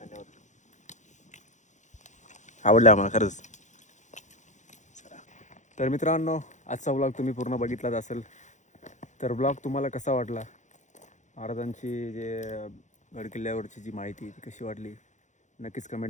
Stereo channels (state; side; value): late; right; 0.35 ms